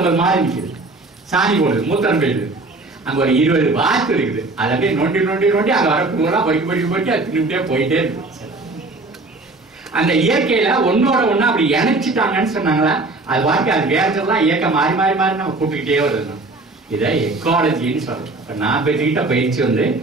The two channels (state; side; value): quieter; left; 3.2 dB